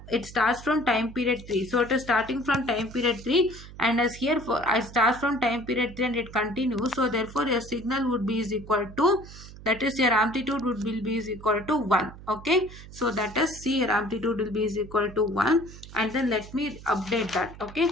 it starts from time period 3, so it is starting from time period 3, and as here for I start from time period 3 and it continues, so therefore your signal would be is equal to, that is your amplitude would be is equal to 1. Okay, so that is, see, your amplitude will be is equal to 1, and then let me update that. Okay,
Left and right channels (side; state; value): right; noise; hum, 16 dB below the sound